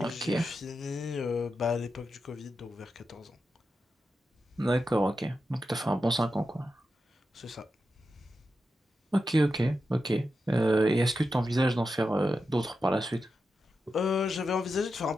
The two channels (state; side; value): normal; both; correlation 0.89